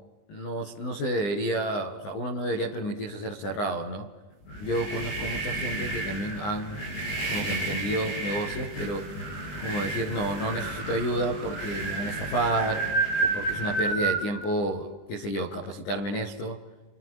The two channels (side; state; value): right; late; 20 ms